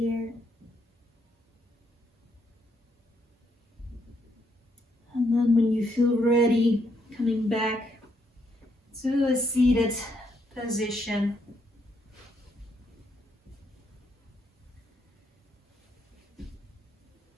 And then when you feel ready, coming back to a seated position.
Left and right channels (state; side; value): normal; both; correlation 0.75